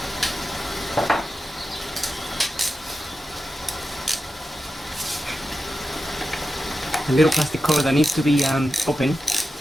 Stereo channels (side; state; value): both; normal; correlation 0.91